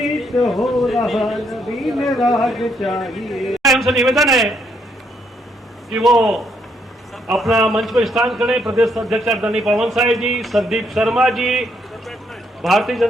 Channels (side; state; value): both; normal; correlation 0.73